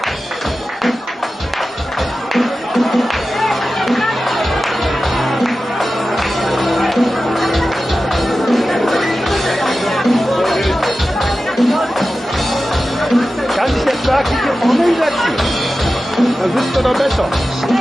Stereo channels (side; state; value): both; normal; correlation 0.94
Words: sag ich, hier vorne hinsetzen. Dann sitzt er da besser.